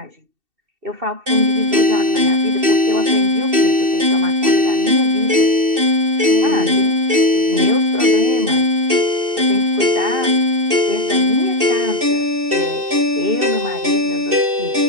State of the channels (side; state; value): left; late; 2.7 ms